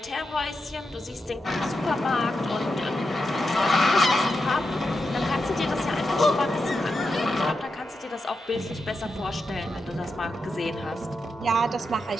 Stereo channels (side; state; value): both; normal; correlation 0.87